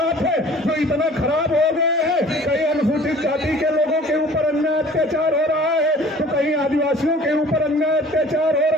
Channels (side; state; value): both; normal; correlation 0.48